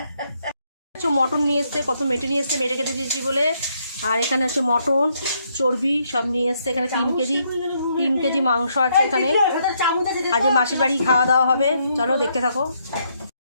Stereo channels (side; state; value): both; inverted; correlation -0.74